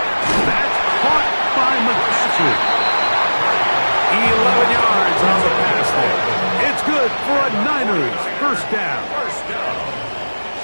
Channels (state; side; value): inverted; both; correlation -1.00